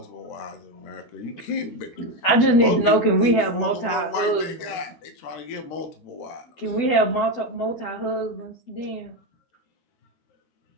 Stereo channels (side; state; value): right; late; 12 ms